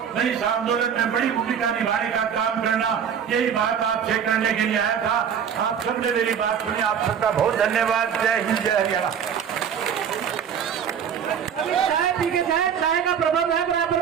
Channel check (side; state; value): left; quieter; 7.9 dB